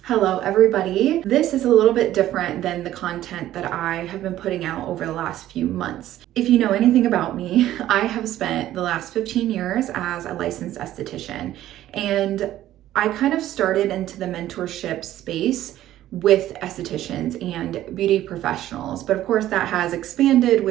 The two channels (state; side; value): quieter; left; 13.5 dB